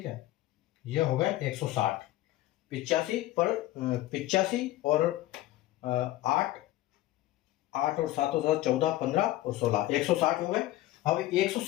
है, ये हो गए 160। 85 और 8 और 7 और 7 14 15 और 16, 160 हो गए। अब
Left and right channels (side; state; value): right; quieter; 15.8 dB